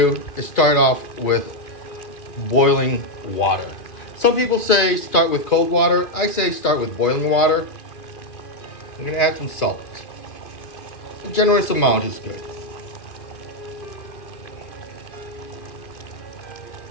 is start off with boiling water. Some people say start with cold water. I say start with boiling water. I'm going to add some salt. A generous amount is good.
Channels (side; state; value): right; late; 2.5 ms